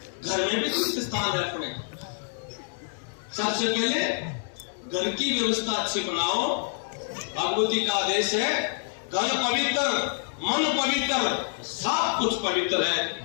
घर में भी तीर्थ स्थान है अपने। सबसे पहले घर की व्यवस्था अच्छी बनाओ। भगवती का आदेश है, घर पवित्र मन पवित्र, सब कुछ पवित्र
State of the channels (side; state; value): right; silent; digital silence